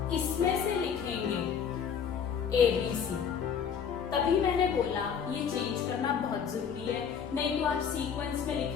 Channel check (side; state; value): right; quieter; 7.2 dB